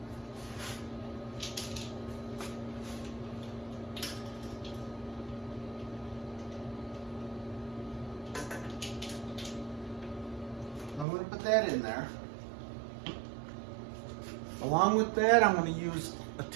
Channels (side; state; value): left; drops out; at 11.1 s